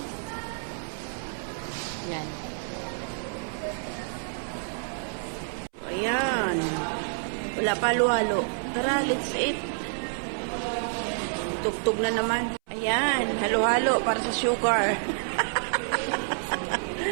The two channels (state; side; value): silent; left; 59 dB below the other